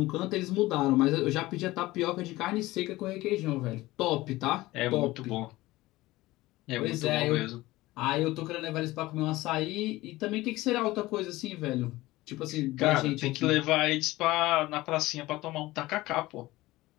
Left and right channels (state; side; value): quieter; right; 18.6 dB